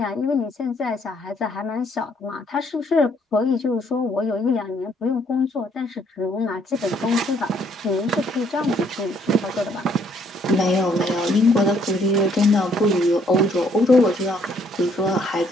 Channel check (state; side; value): normal; both; correlation 0.67